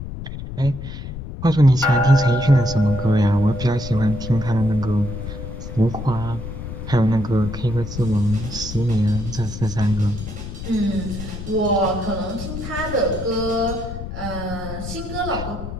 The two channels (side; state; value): left; noise; rumble, 8 dB below the sound